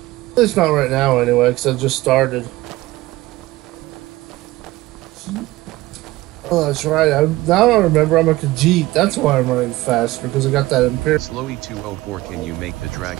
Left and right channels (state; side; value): quieter; left; 18.5 dB